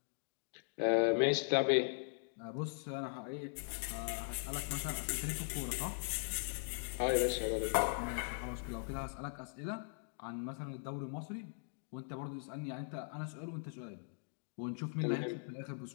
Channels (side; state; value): right; silent; digital silence